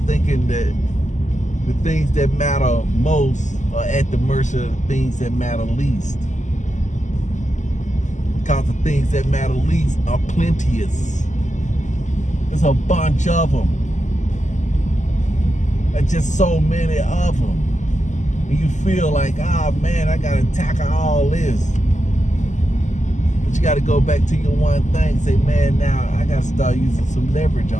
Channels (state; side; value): late; right; 0.35 ms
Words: thinking that the things that matter most are at the mercy of the things that matter least. Because the things that matter least are plenteous. There's a bunch of them. There's just so many of them. And you feel like, oh man, I gotta tackle all this. But you gotta go back to your one thing, say, man, now I gotta start using some leverage